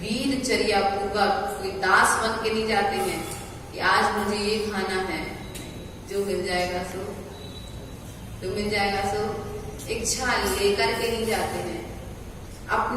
वीर चर्या पूर्वक, कोई दास बन के नहीं जाते हैं कि आज मुझे ये खाना है, जो मिल जाएगा सो, जो मिल जाएगा सो, इच्छा लेकर के नहीं जाते हैं।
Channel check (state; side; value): identical; both; correlation 1.00